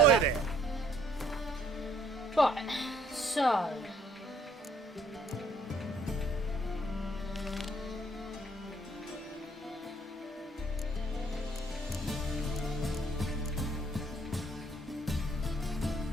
go. there. Right, so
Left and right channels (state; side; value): normal; both; correlation 0.62